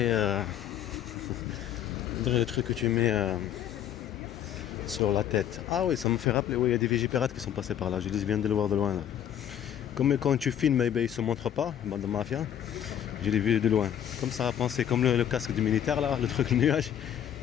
le truc que tu mets sur la tête. Ah oui, ça me fait rappeler, oui, il y a des Vigipirates qui sont passés par là. Je viens de le voir de loin là. Comme quand tu filmes, eh bien, ils ne se montrent pas, bande de mafia. Je l'ai vu de loin. Comme ça a pensé, comme le casque du militaire là, le truc le nuage.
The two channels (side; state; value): right; quieter; 10.2 dB